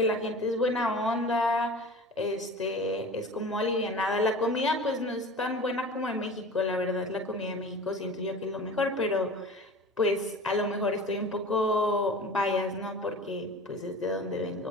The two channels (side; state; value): both; normal; correlation 0.37